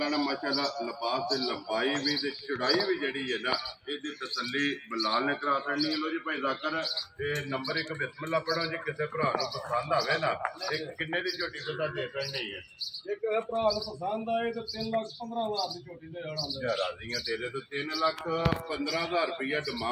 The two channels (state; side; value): identical; both; correlation 1.00